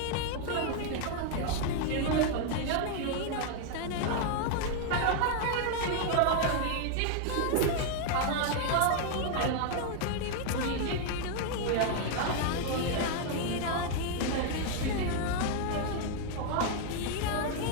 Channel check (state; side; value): different; both; correlation 0.00